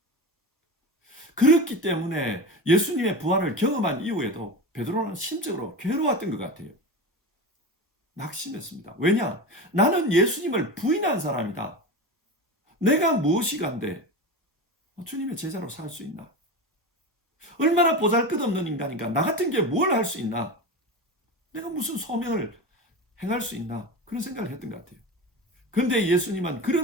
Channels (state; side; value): normal; both; correlation 0.25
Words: 그렇기 때문에 예수님의 부활을 경험한 이후에도 베드로는 심적으로 괴로웠던 것 같아요. 낙심했습니다. 왜냐? 나는 예수님을 부인한 사람이다. 내가 무엇이 간데 주님의 제자로 살 수 있나? 얼마나 보잘것없는 인간인가? 나 같은 게 뭘 할 수 있나? 내가 무슨 소명을 행할 수 있나? 그런 생각을 했던 것 같아요. 그런데 예수님은